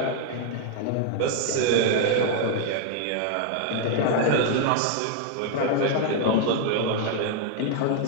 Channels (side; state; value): both; different; correlation 0.00